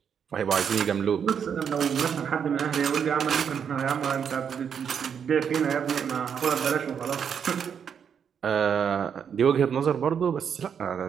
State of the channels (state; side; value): quieter; left; 7.5 dB